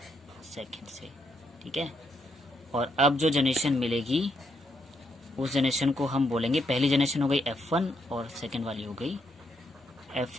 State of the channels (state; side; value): normal; both; correlation 0.77